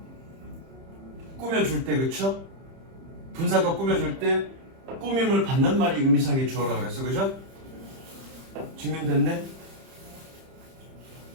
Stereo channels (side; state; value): left; late; 30 ms